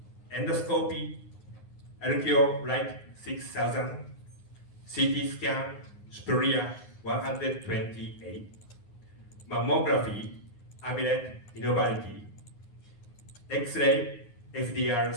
endoscopy, Algeo Light 6000, CT scan Superior 128, mammography, Amulet Innovality, X-ray, FDR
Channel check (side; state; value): right; late; 9.6 ms